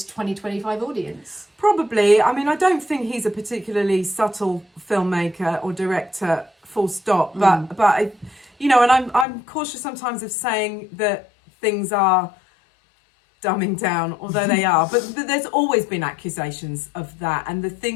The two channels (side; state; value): right; drops out; at 9.2 s